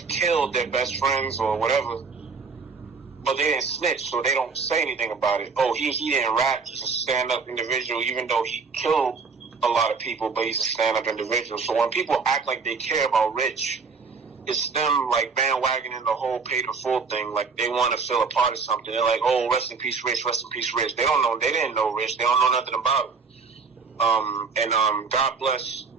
killed their best friends or whatever, but they didn't snitch, so they don't say anything about it. He didn't rap, he's a stand-up individual, even though he killed a lot of people, but he's a stand-up individual. So when people act like they care about Rich, it's them like bandwagoning the whole paid in full thing, like they want to feel a part of something. They're like, rest in peace Rich, rest in peace Rich. They didn't know Rich, they don't know nothing about it. God bless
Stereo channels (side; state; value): left; quieter; 4.9 dB